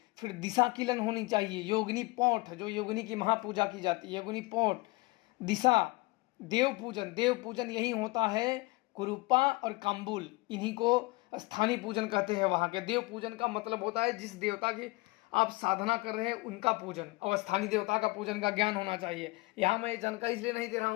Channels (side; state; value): right; quieter; 23.9 dB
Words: फिर दिशा किलन होनी चाहिए, योगिनी पोठ, जो योगिनी की महापूजा की जाती है, योगिनी पोठ, दिशा, देव पूजन यही होता है। कुरूपा और काम्बुल, इन्हीं को स्थानीय पूजन कहते हैं। वहाँ के देव पूजन का मतलब होता है जिस देवता की आप साधना कर रहे हैं उनका पूजन, और स्थानीय देवता का पूजन का ज्ञान होना चाहिए। यहाँ मैं जानकारी इसलिए नहीं दे रहा